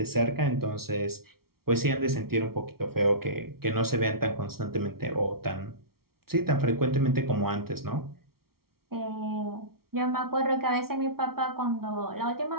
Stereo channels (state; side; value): late; left; 0.94 ms